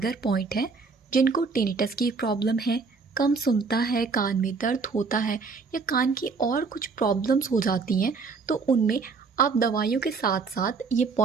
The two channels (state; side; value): quieter; left; 4.7 dB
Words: पॉइंट है। जिनको टिनिटस की प्रॉब्लम है, कम सुनता है, कान में दर्द होता है या कान की और कुछ प्रॉब्लम्स हो जाती हैं, तो उनमें आप दवाइयों के साथ साथ ये